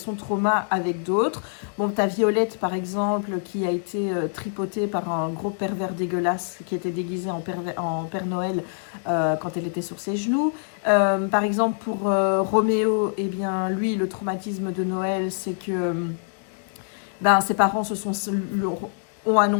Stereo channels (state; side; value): silent; right; digital silence